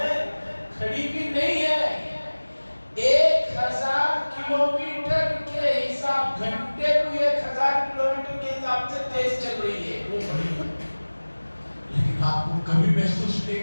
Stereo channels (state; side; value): inverted; both; correlation -1.00